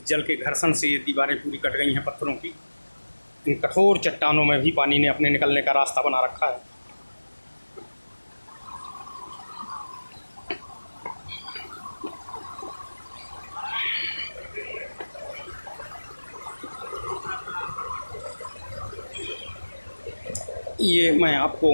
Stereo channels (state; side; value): inverted; both; correlation -1.00